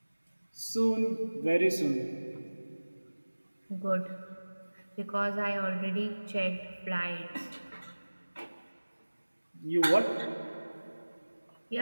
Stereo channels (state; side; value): inverted; both; correlation -1.00